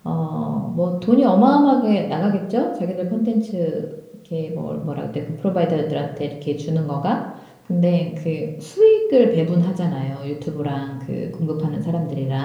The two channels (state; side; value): identical; both; correlation 1.00